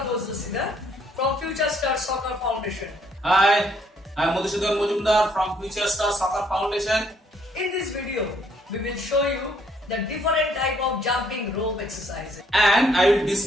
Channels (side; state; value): both; normal; correlation 0.67